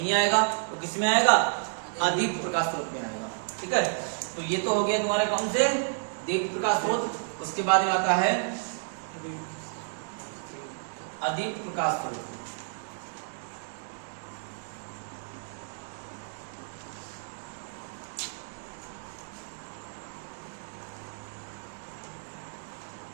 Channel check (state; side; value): silent; left; digital silence